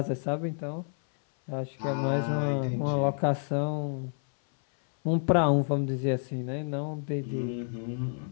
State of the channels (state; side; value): silent; right; 58 dB below the other